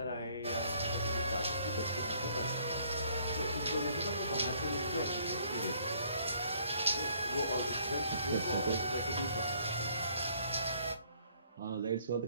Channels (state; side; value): inverted; both; correlation -0.63